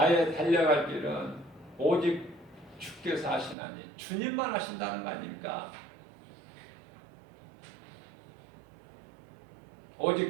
달려갈 길은 오직 주께서 하시나니, 주님만 하신다는 거 아닙니까? 오직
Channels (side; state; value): left; drops out; at 3.6 s